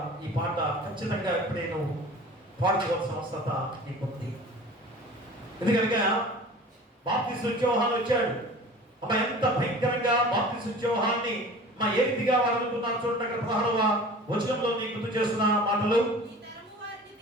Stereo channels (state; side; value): normal; both; correlation 0.42